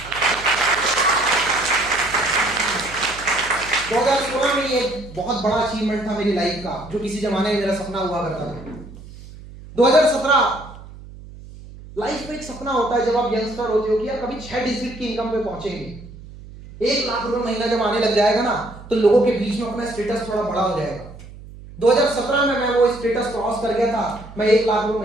2016 में ये एक बहुत बड़ा अचीवमेंट था मेरी लाइफ का, जो किसी जमाने में मेरा सपना हुआ करता था। 2017 लाइफ में एक सपना होता है जब आप यंगस्टर होते हो कि यार कभी 6 डिजिट की इनकम पे पहुंचेंगे। 1 लाख रुपए महीना जब आने लग जाएगा ना, तो लोगों के बीच में अपना स्टेटस थोड़ा बड़ा हो जाएगा। 2017 में मैं वो स्टेटस क्रॉस कर गया था, मैं 1 लाख रुपए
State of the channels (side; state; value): right; noise; hum, 17 dB below the sound